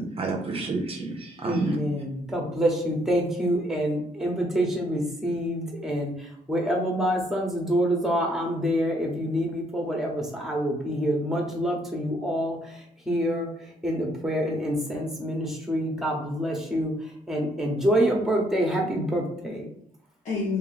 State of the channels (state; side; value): normal; both; correlation 0.69